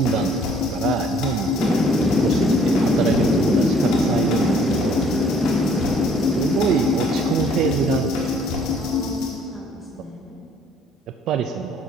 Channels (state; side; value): normal; both; correlation 0.59